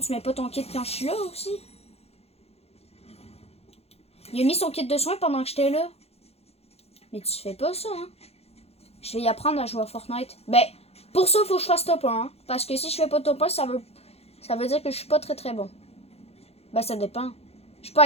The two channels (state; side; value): late; right; 0.30 ms